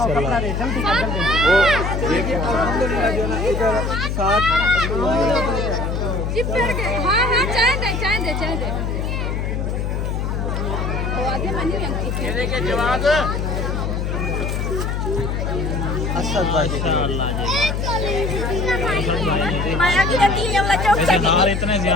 दे जल्दी कर जल्दी। अल्हम्दुलिल्लाह जो ना इधर साथ चिपक गए। हाँ हाँ चाय दे वो आगे मनी अंकित ये देखिए जवाब असद भाई माया की रहती है वाला चौक वैसे हार इतने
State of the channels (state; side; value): noise; left; hum, 1 dB below the sound